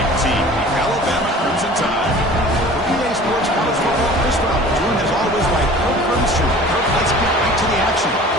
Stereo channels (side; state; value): both; normal; correlation 0.44